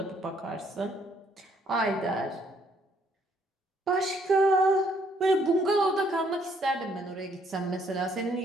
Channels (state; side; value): normal; both; correlation 0.67